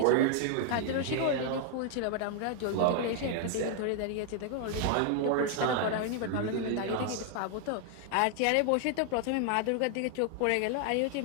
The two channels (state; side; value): different; both; correlation 0.00